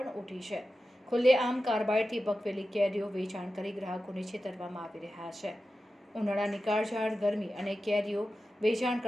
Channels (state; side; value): normal; both; correlation 0.93